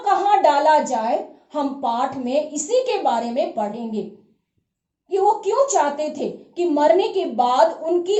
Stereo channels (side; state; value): both; identical; correlation 1.00